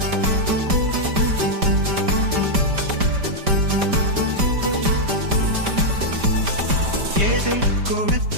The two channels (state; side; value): late; left; 5.0 ms